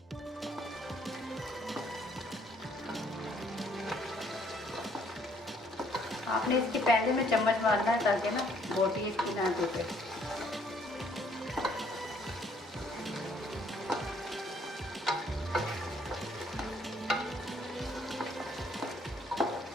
आपने इसके पहले में चम्मच मारना है ताकि ना बोटी इसकी ना टूटे।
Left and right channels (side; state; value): both; normal; correlation 0.65